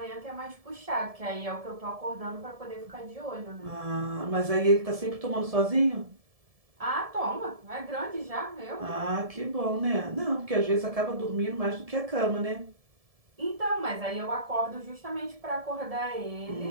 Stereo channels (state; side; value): late; left; 1.7 ms